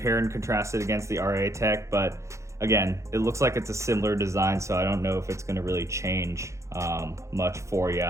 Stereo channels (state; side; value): late; left; 0.14 ms